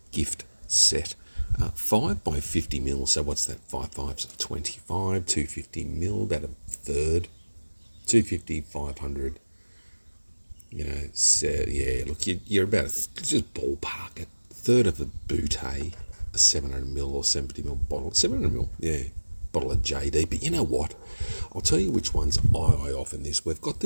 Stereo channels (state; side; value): inverted; both; correlation -1.00